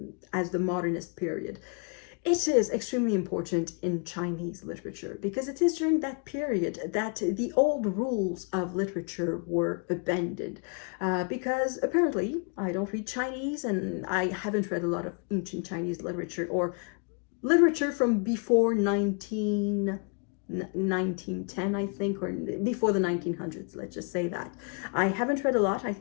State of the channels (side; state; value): right; quieter; 38.7 dB